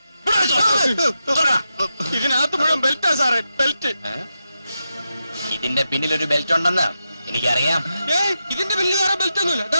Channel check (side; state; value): both; inverted; correlation -0.88